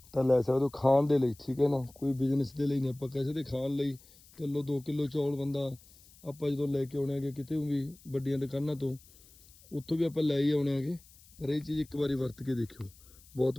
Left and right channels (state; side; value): noise; left; hiss, 25 dB below the sound